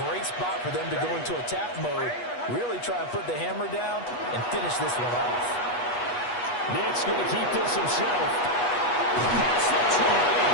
great spot for them to go into attack mode, really try and put the hammer down and finish this one off. Nick's going to keep this himself. That's the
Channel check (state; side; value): late; right; 8.2 ms